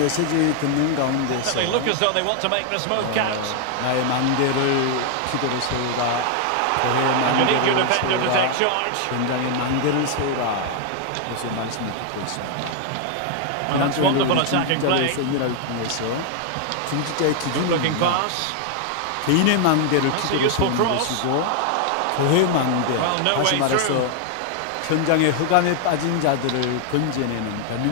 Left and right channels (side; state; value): both; different; correlation 0.00